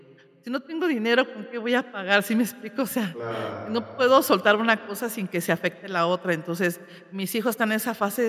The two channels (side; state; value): both; identical; correlation 1.00